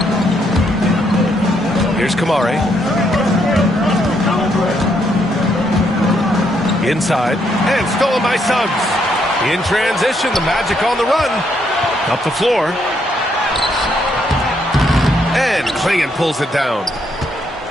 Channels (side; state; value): both; normal; correlation 0.74